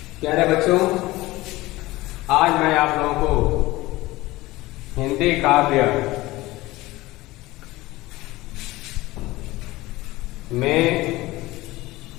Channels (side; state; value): right; quieter; 19.1 dB